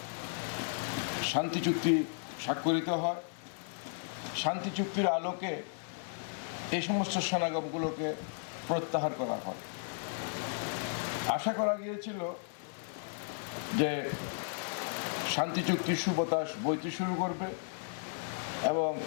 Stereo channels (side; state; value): right; silent; 55 dB below the other